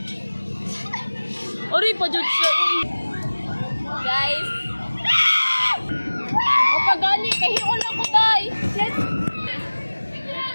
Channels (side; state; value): both; inverted; correlation -1.00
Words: Ori pa dyan siya. Guys. O pagani, kahiyon ako, guys.